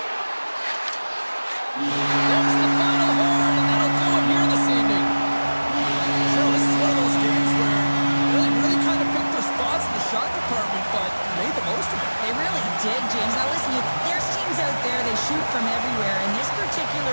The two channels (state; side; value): inverted; both; correlation -1.00